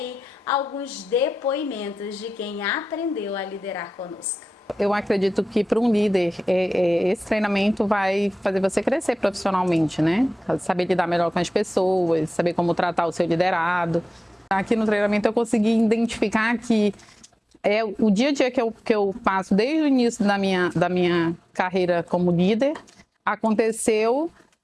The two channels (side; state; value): both; normal; correlation 0.95